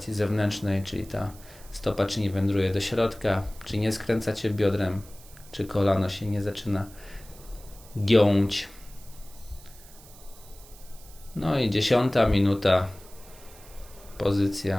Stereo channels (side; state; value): right; noise; hiss, 22 dB below the sound